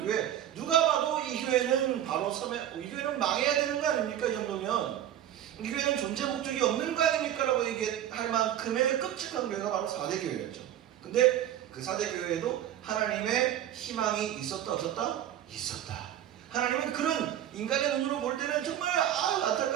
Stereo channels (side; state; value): left; quieter; 11.2 dB